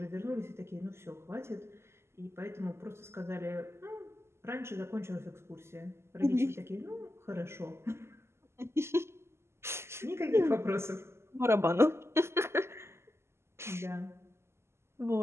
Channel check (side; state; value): left; late; 0.12 ms